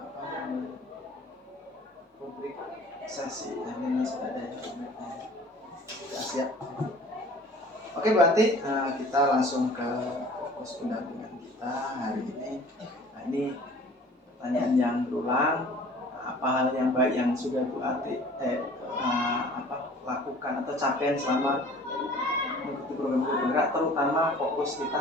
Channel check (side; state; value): both; normal; correlation 0.48